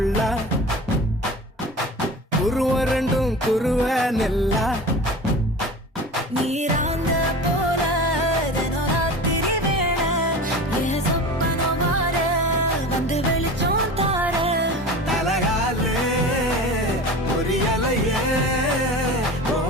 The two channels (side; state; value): both; normal; correlation 0.34